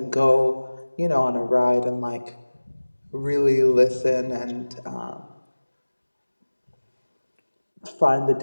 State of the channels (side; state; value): both; inverted; correlation -1.00